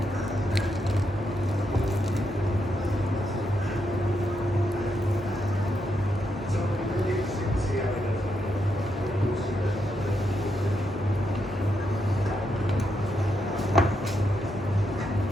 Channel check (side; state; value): both; normal; correlation 0.81